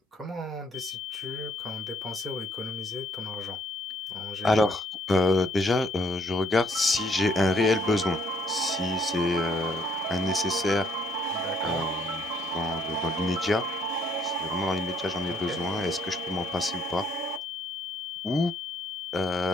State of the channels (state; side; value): normal; both; correlation 0.66